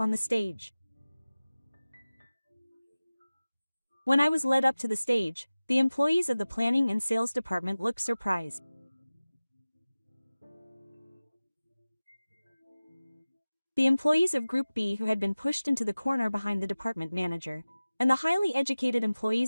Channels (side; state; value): both; inverted; correlation -0.97